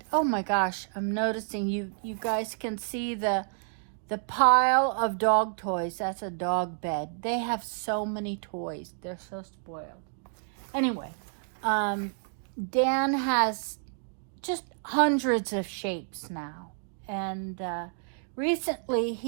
Oh my gosh, I'm noticing you guys can see the pile of dog toys. That's a dog bed. They have so many toys. They're so spoiled. Anyway, Dan has just hundreds of shapes now. And recently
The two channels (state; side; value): silent; left; digital silence